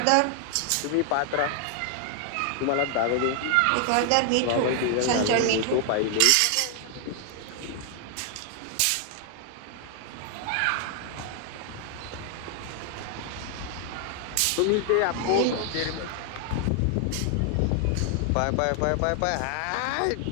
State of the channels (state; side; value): different; both; correlation 0.00